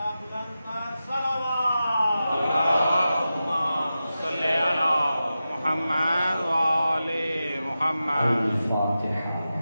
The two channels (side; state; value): both; inverted; correlation -0.92